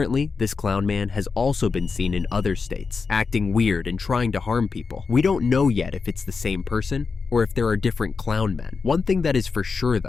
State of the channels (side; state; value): right; quieter; 4.9 dB